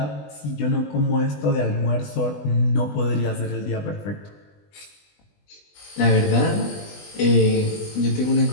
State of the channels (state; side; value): late; right; 20 ms